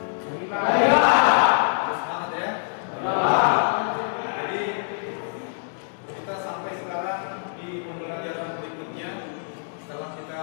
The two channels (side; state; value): right; silent; 62 dB below the other